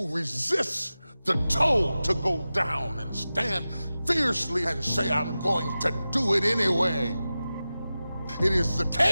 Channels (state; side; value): inverted; both; correlation -0.95